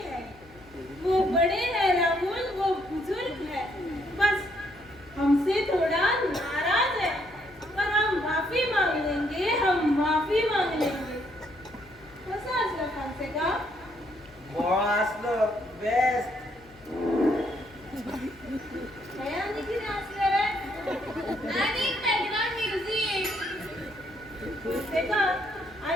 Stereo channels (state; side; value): noise; left; hum, 25 dB below the sound